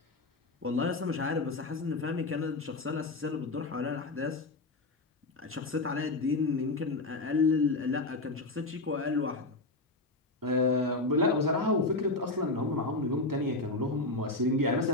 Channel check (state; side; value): quieter; right; 3.1 dB